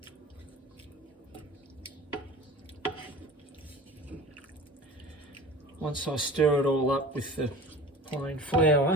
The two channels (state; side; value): normal; both; correlation 0.39